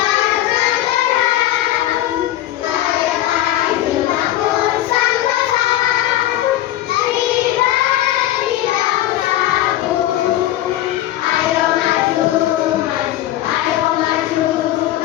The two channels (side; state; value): right; quieter; 14.0 dB